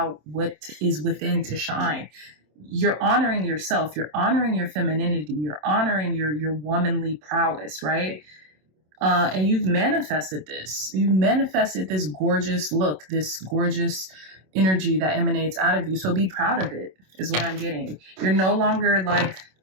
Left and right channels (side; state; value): left; late; 27 ms